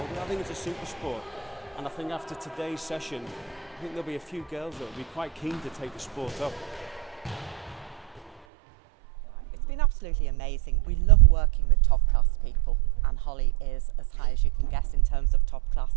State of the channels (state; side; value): drops out; left; at 8.3 s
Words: in. I think it's a super sport. And I think after today's session, I think there'll be a few girls that will be quite keen to take the sport up. It's been absolutely amazing. We love working with top class people, and Holly is as high as you can get in terms of top